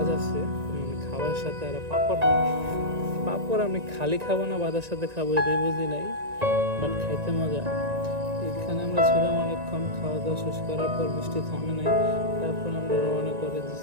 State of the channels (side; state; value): left; late; 1.9 ms